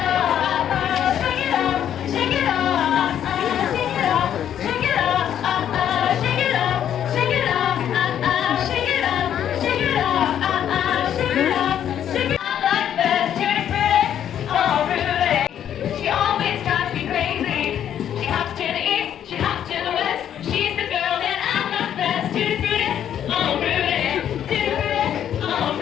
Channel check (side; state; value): right; quieter; 10.0 dB